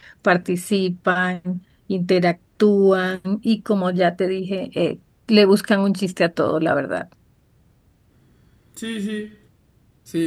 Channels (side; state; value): both; identical; correlation 1.00